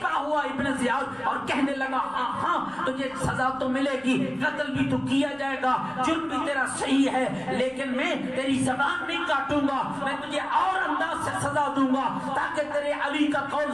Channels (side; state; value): left; noise; rumble, 27 dB below the sound